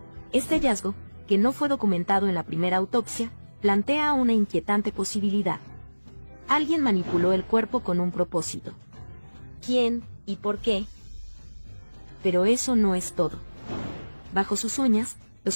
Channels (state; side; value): inverted; both; correlation -1.00